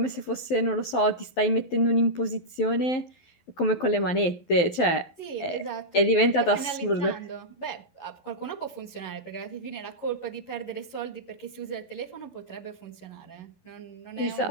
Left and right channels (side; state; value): right; late; 12 ms